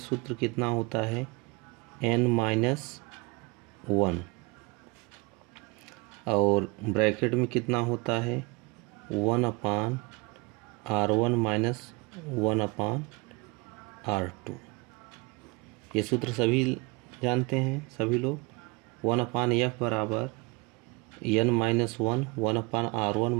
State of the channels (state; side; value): quieter; left; 26.5 dB